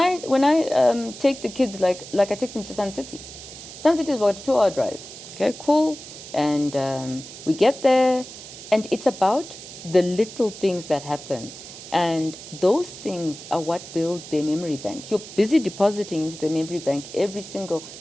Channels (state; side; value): noise; right; hiss, 14 dB below the sound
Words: I take the kids, like I take them to Sun City. Sun City is about a 2-hour drive. Okay, cool. And we get there, and it's about the little things that happen. And those things are what builds their memory bank. You're busy depositing into the memory bank every single